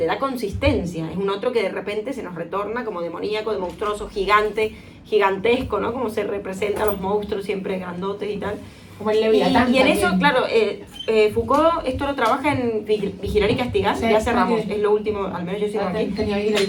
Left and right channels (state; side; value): identical; both; correlation 1.00